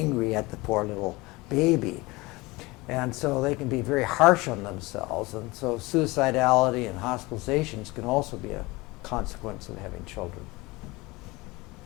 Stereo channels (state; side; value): quieter; right; 22.7 dB